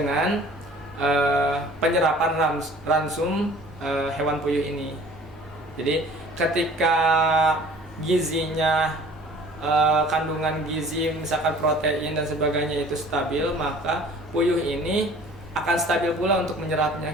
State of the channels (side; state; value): both; normal; correlation 0.49